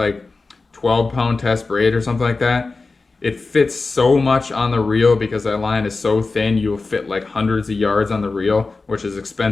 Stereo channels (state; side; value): quieter; right; 3.8 dB